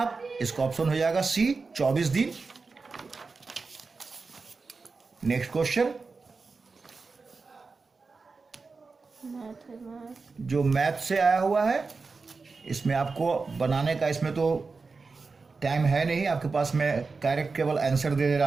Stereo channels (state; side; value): quieter; left; 4.3 dB